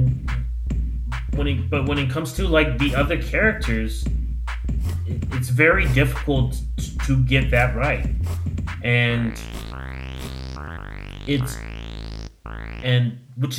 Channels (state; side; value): identical; both; correlation 1.00